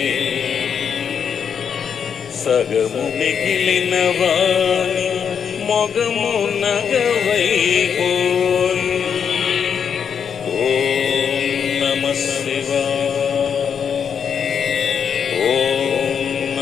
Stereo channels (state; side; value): quieter; right; 7.2 dB